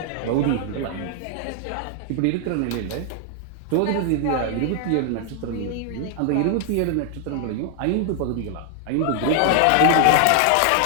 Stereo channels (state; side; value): different; both; correlation 0.00